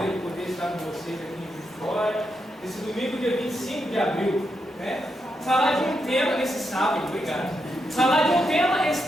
poder estar com vocês aqui em Vitória, esse domingo, dia 25 de abril, né? Falar de um tema nesse sábado, obrigado. Falar de um tema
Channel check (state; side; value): normal; both; correlation 0.83